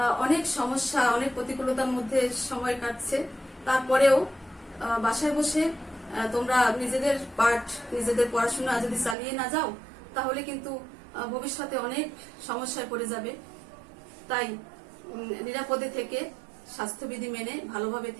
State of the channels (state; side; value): drops out; left; at 9.2 s